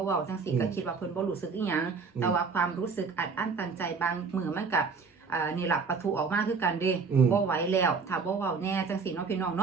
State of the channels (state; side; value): quieter; left; 5.0 dB